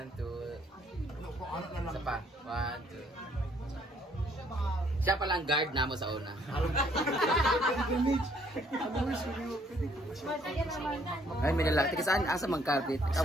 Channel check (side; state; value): both; normal; correlation 0.65